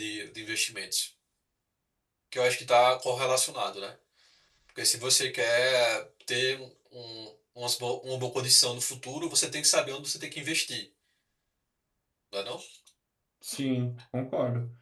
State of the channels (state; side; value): identical; both; correlation 1.00